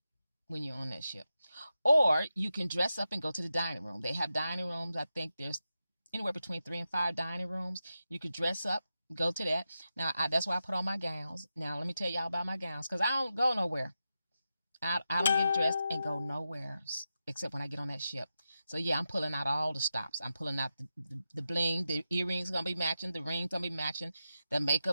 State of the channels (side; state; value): both; inverted; correlation -0.90